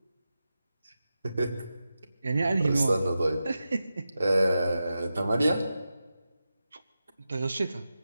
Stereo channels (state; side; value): inverted; both; correlation -0.91